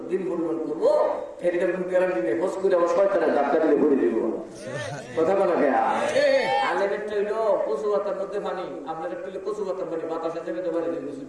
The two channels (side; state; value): both; identical; correlation 1.00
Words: দিন পরিমাণ করবো এরকম গ্যারান্টি নেই হোস করে আমার শয়তানের ধাক্কা দিলে ভরে দিব কথা বলা গেয়া আলেমেরটা হইলো কচু পাতার মধ্যে পানি আপনার একটু কচু পাতার পানি বাতাসের জায়গাতে পারে